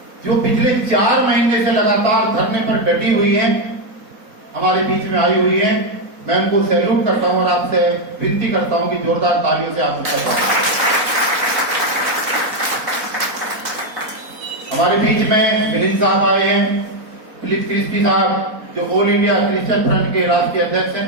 जो पिछले 4 महीने से लगातार धरने पर डटी हुई हैं, हमारे बीच में आई हुई हैं। मैं उनको सैल्यूट करता हूं और आपसे विनती करता हूं कि जोरदार तालियों से आप उनका स्वागत। हमारे बीच में मिलिंद साहब आए हैं, फिलिप क्रिस्टी साहब जो ऑल इंडिया क्रिश्चियन फ्रंट के राष्ट्रीय अध्यक्ष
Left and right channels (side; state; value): left; late; 4.1 ms